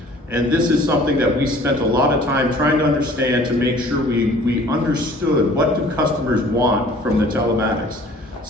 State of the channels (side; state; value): both; normal; correlation 0.51